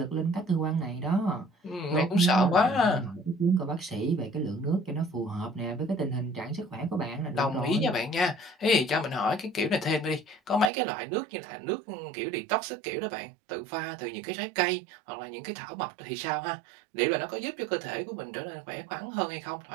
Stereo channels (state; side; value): drops out; left; at 10.7 s